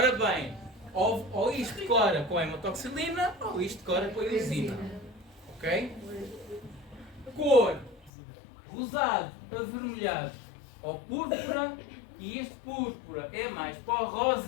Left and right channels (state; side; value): drops out; right; at 8.1 s